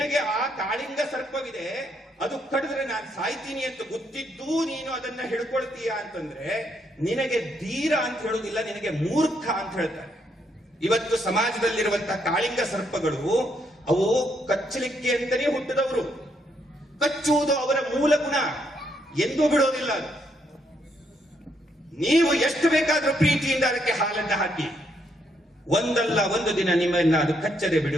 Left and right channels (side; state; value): both; normal; correlation 0.75